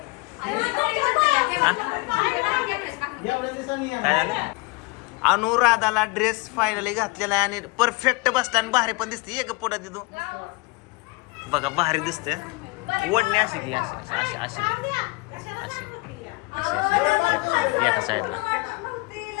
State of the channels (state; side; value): quieter; right; 25.1 dB